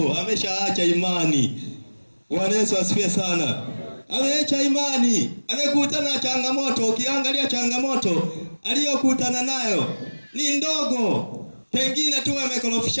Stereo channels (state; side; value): inverted; both; correlation -1.00